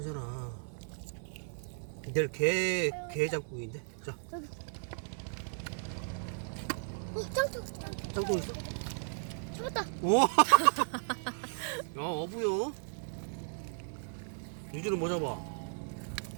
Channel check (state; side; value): silent; left; digital silence